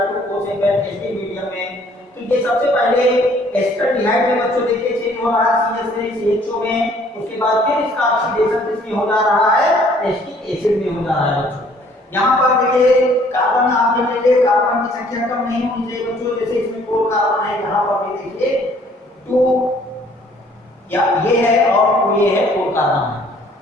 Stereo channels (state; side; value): normal; both; correlation 0.59